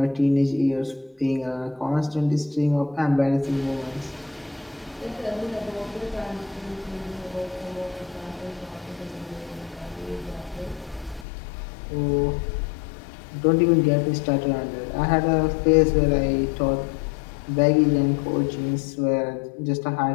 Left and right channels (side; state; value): right; drops out; at 11.2 s